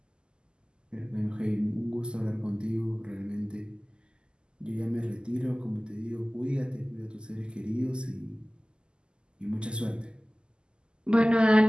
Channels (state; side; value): late; left; 0.048 ms